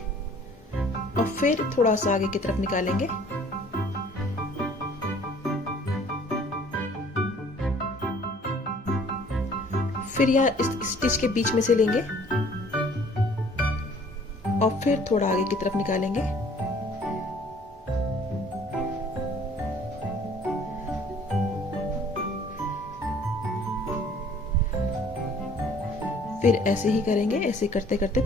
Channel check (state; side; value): normal; both; correlation 0.55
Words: और फिर थोड़ा सा आगे की तरफ निकालेंगे। फिर यह इस स्टिच के बीच में से लेंगे और फिर थोड़ा आगे की तरफ निकालेंगे। फिर ऐसे ही करेंगे। ऐसे करते करते